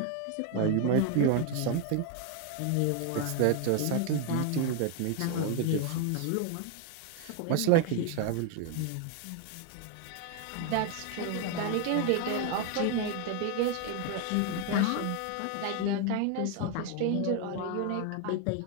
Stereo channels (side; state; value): both; different; correlation 0.01